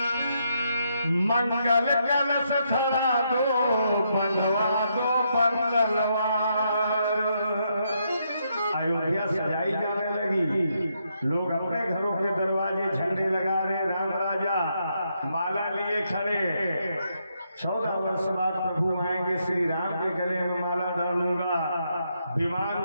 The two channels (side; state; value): both; inverted; correlation -0.78